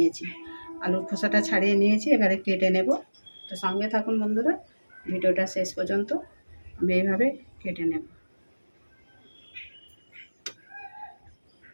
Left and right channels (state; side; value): inverted; both; correlation -1.00